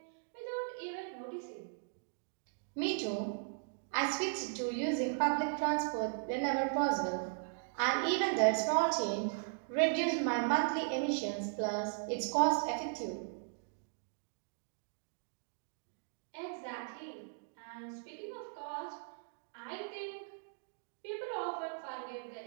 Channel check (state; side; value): silent; left; digital silence